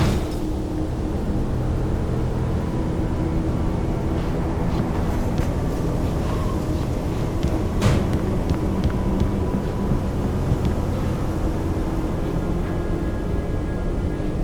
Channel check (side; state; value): both; identical; correlation 1.00